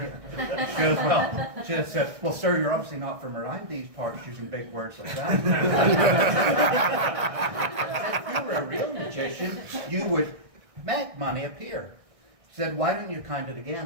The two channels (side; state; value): left; late; 1.6 ms